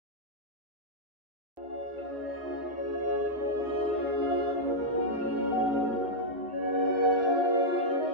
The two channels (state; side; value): normal; both; correlation -0.05